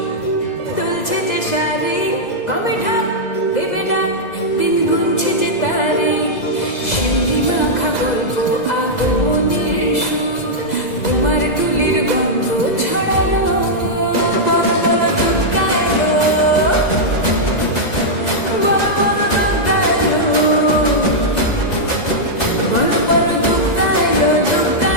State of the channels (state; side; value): late; right; 2.0 ms